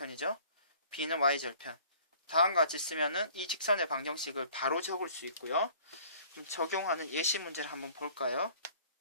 b는 y절편. 다음과 같이 쓰면은 이 직선의 방정식을 바로 적을 수 있고요. 그럼 적용하는 예시 문제를 한번 볼까요?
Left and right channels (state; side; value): inverted; both; correlation -0.52